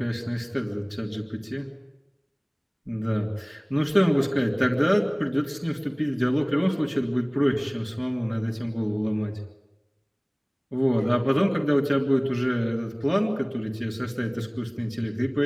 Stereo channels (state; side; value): identical; both; correlation 1.00